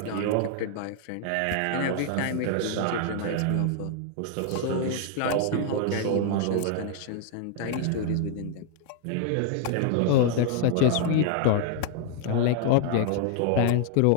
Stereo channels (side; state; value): both; different; correlation 0.00